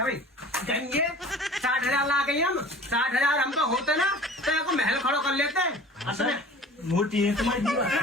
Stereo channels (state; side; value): normal; both; correlation 0.44